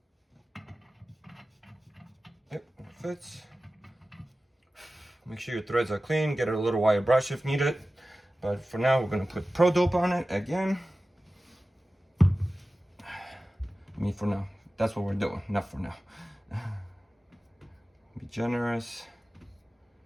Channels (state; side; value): normal; both; correlation 0.95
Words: Yep, it fits. Make sure your threads are clean. Get a little wire brush if needed. But for now, we're gonna put Pro Dope on it again. I mean, for now. That's what we're doing, not for now. Be generous.